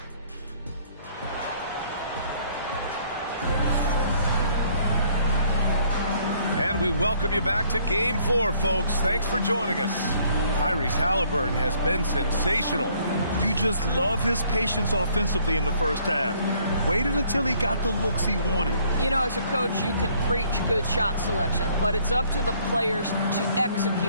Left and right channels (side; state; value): both; inverted; correlation -0.63